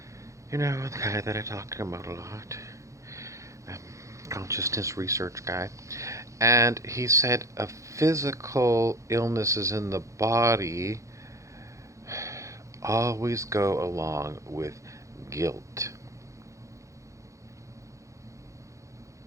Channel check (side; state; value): left; late; 0.15 ms